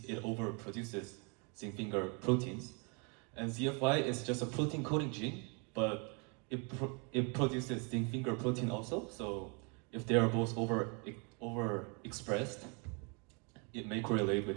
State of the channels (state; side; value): quieter; left; 34.1 dB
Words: it overproduces zinc finger proteins. And ZFY is just a protein coding gene, but it produces zinc finger protein also. So if they are both overexpressed, it may correlate